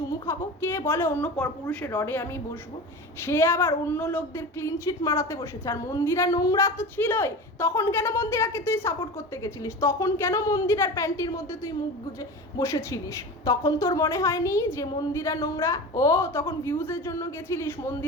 খাবো? কে বলে অন্য পরপুরুষের রডে আমি বসবো? সে আবার অন্য লোকদের ক্লিন চিট মারাতে বসেছে। আর মন্দিরা নোংরা তো ছিলই, তখন কেন মন্দিরাকে তুই সাপোর্ট করতে গেছিলিস? তখন কেন মন্দিরার প্যান্টির মধ্যে তুই মুখ গুজে বসেছিলিস? তখন তোর মনে হয়নি যে মন্দিরা নোংরা? ও তখন ভিউজের জন্য গেছিলিস,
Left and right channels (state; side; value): normal; both; correlation 0.30